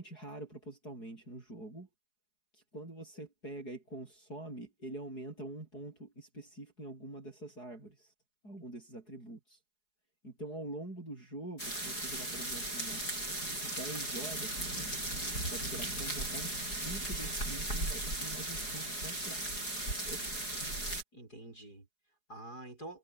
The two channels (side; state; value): right; late; 4.8 ms